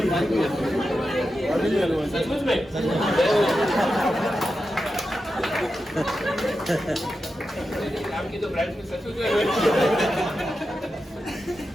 सचमुच में? आपकी तो ब्रांच में सचमुच में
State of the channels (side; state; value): both; normal; correlation 0.90